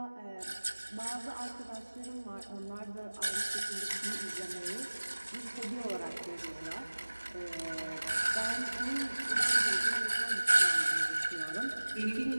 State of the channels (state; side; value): inverted; both; correlation -1.00